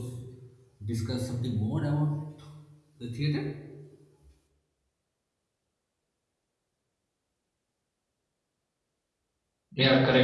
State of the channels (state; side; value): identical; both; correlation 1.00